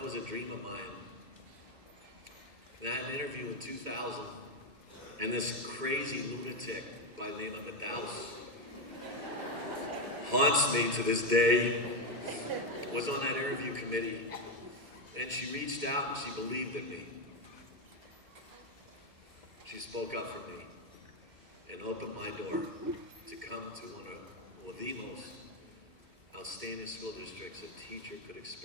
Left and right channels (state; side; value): late; left; 2.1 ms